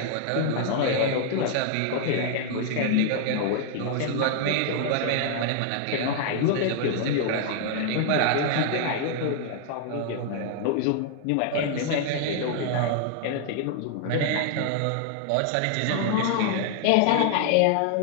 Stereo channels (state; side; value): different; both; correlation 0.00